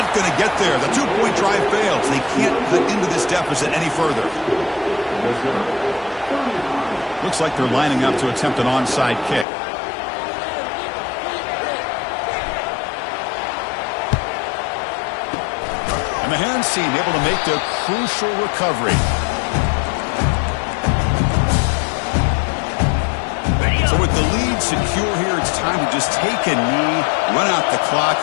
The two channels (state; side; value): drops out; right; at 9.5 s